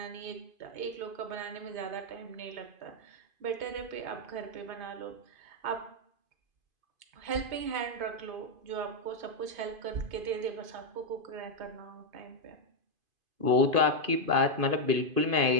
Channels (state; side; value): late; left; 2.5 ms